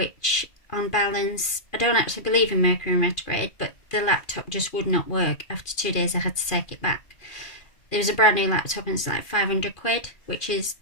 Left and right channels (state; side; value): late; right; 2.4 ms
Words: on balance, I don't actually believe in Mercury in retrograde, but the laptop just would not work. After 2 days I had to take it back. There was a brand new laptop and it's like 500 quid, which is